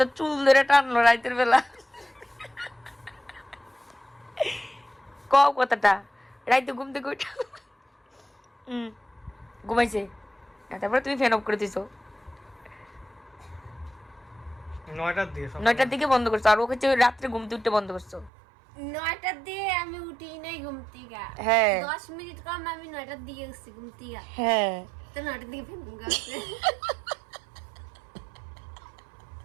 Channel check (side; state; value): left; drops out; at 18.3 s